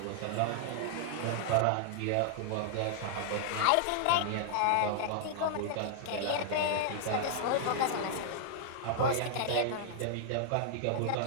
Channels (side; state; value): both; different; correlation -0.01